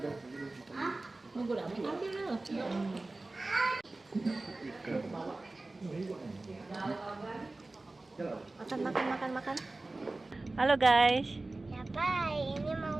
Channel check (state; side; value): quieter; left; 3.1 dB